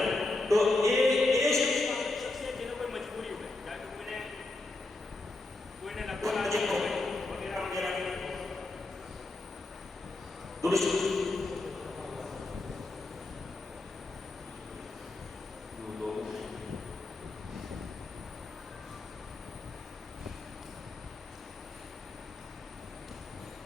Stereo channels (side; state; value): right; quieter; 3.0 dB